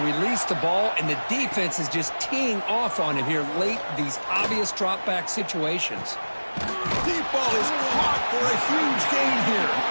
released the ball, and the defense is just teeing off on him here late, these obvious drop-back situations. Deep ball is caught for a huge gain here.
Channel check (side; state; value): both; inverted; correlation -1.00